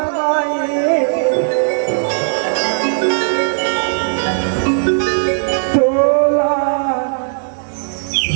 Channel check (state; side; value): silent; left; digital silence